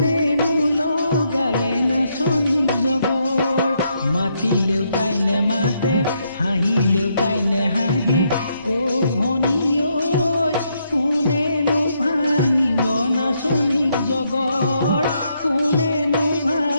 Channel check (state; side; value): inverted; both; correlation -0.76